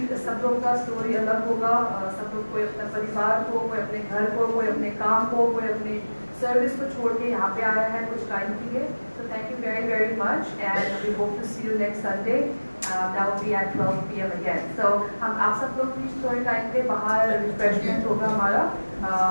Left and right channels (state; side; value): inverted; both; correlation -1.00